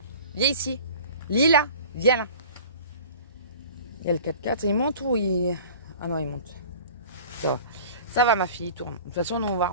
viens ici. Lila, viens là. Il y a le 4x4, il monte ou il... Ah non il monte. Ça va ma fille, il tourne. De toute façon nous on va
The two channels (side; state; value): both; inverted; correlation -0.42